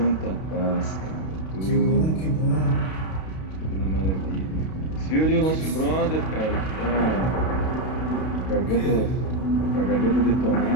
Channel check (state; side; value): late; right; 32 ms